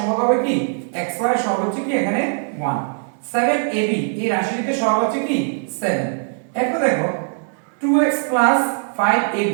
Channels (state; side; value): silent; left; 65 dB below the other